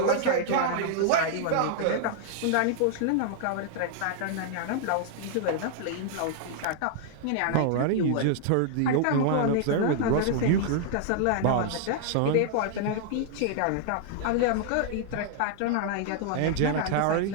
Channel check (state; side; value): different; both; correlation -0.01